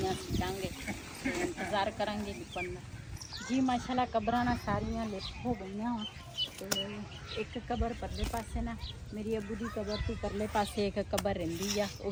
ਸਿੱਟਾਂਗੇ ਇੰਤਜ਼ਾਰ ਕਰਾਂਗੇ ਲਿਪਣ ਦਾ। ਜੀ ਮਾਸ਼ਾਅੱਲਾ ਕਬਰਾਂ ਨਾ ਸਾਰੀਆਂ ਲਿਪ ਹੋ ਗਈਆਂ ਤੇ ਇੱਕ ਕਬਰ ਪਰਲੇ ਪਾਸੇ ਨਾ ਮੇਰੀ ਅੱਬੂ ਦੀ ਕਬਰ ਤੋਂ ਪਰਲੇ ਪਾਸੇ ਇੱਕ ਕਬਰ ਰਹਿੰਦੀ ਆ ਉਹ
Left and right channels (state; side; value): identical; both; correlation 1.00